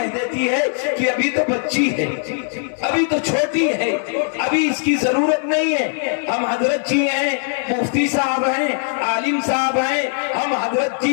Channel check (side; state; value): right; silent; 60 dB below the other